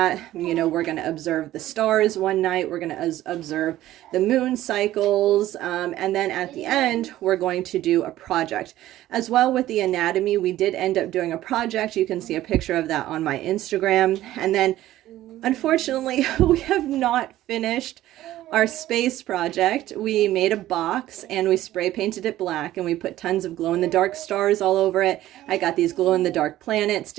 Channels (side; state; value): left; quieter; 14.5 dB